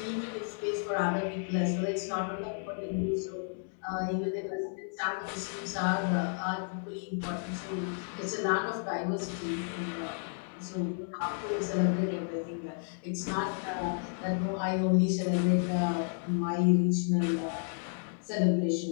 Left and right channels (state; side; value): silent; right; 56 dB below the other